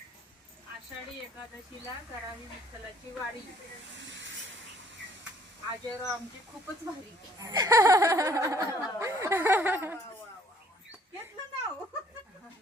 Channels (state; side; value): normal; both; correlation 0.60